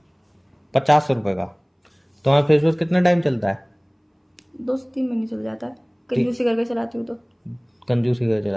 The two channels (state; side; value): identical; both; correlation 1.00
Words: 50 रुपए का। तुम्हारा फेस वॉश कितना टाइम चलता है? 2 से 3 महीने चल जाता है, कंजूसी करके चलाती हूँ तो। कंजूसी का